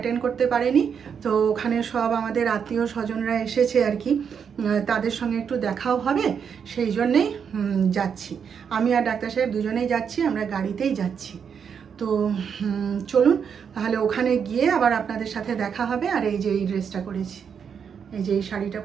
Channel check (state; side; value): quieter; left; 7.1 dB